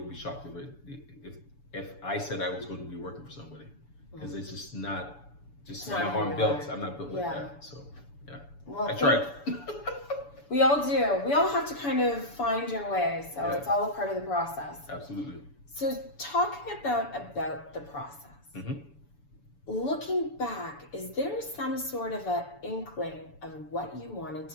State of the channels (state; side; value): late; right; 7.0 ms